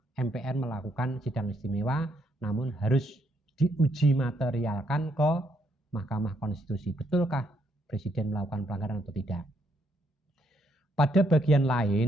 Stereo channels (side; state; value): both; normal; correlation 0.74